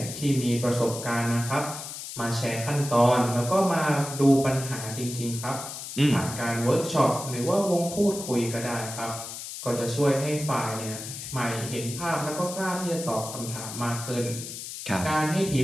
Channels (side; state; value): left; noise; hiss, 9 dB below the sound